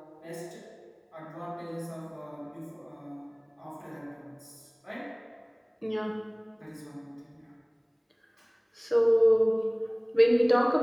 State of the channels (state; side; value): identical; both; correlation 1.00